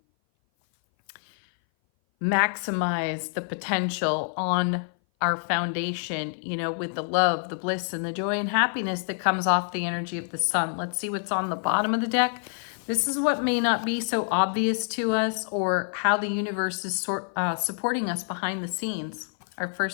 maximize the potential on our foundation, you know, with the love, the bliss, and the joy and happiness that comes off the energy of the sun. Let's see what's on the bottom of the deck. This is what may not be so obvious to us, or how the universe is supporting us behind the scenes. Our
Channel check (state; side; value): silent; right; 57 dB below the other